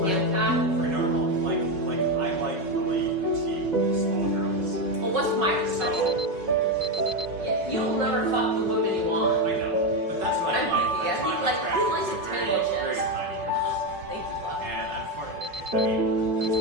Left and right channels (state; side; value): late; left; 5.4 ms